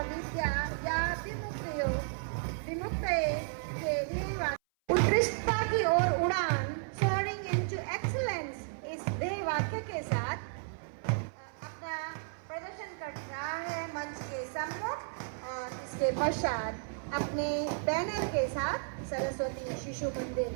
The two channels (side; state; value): left; silent; 55 dB below the other